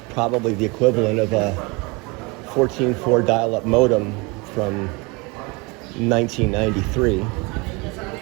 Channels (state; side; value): quieter; left; 27.4 dB